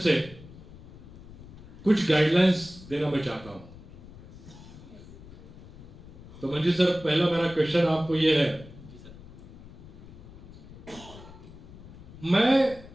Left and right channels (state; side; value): noise; left; rumble, 17 dB below the sound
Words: कुछ गाइडलाइंस देना मैं चाहता हूं। तो मंजीत सर, पहला मेरा क्वेश्चन आपको ये है, मैं